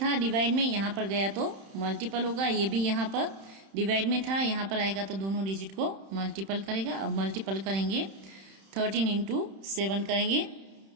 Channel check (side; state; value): left; late; 31 ms